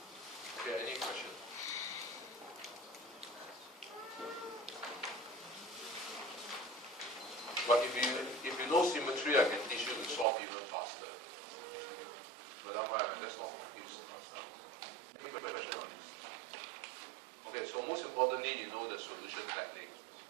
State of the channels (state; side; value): drops out; left; at 10.2 s